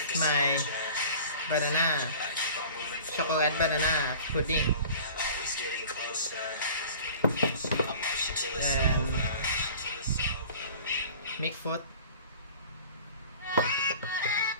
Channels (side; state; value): both; inverted; correlation -0.43